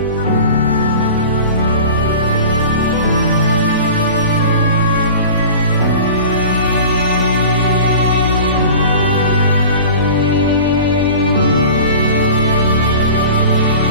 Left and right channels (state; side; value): inverted; both; correlation -0.38